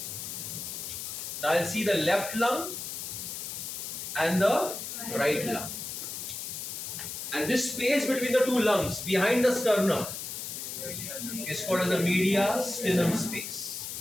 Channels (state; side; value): noise; left; hiss, 6 dB below the sound